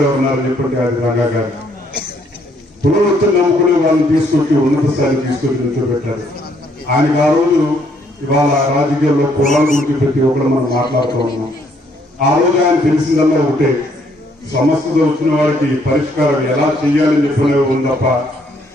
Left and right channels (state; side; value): normal; both; correlation 0.68